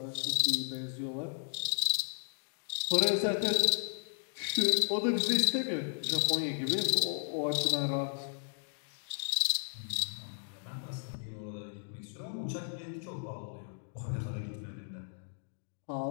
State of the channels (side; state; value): right; silent; digital silence